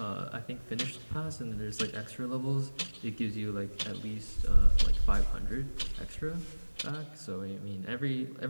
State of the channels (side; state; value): both; inverted; correlation -1.00